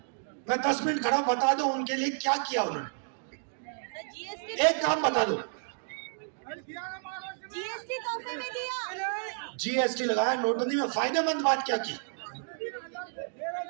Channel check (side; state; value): left; silent; digital silence